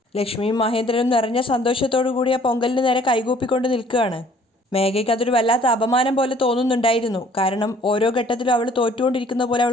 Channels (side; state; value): both; normal; correlation 0.57